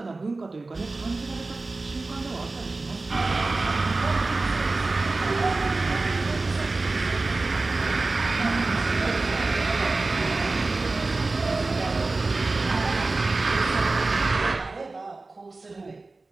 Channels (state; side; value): quieter; left; 3.4 dB